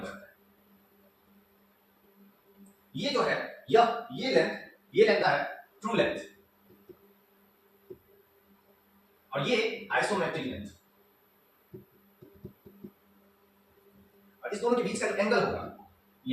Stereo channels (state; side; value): identical; both; correlation 1.00